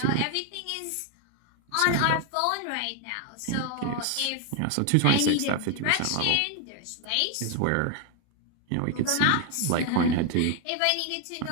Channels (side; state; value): both; different; correlation 0.01